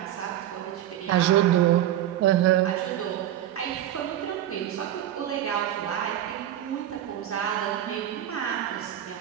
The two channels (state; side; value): quieter; left; 12.0 dB